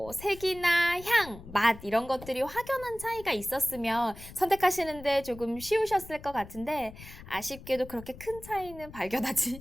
색이나 향, 맛 이런 것들이 확연한 차이가 있었으면 선택하시는데 조금 쉬우셨을 것 같은데 아쉽게도 그렇게 큰 차이는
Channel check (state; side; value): noise; left; rumble, 17 dB below the sound